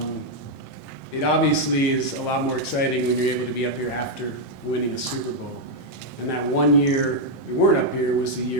It obviously is a lot more exciting when you're able to be up here after winning a Super Bowl. And that one year we weren't up here was the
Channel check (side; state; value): both; normal; correlation -0.01